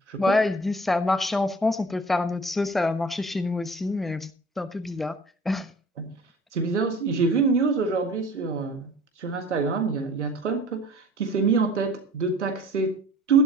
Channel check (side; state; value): both; normal; correlation 0.46